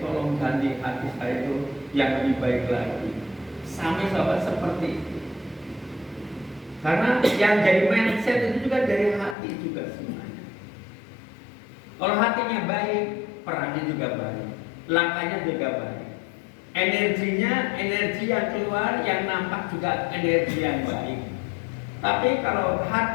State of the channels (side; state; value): right; drops out; at 9.3 s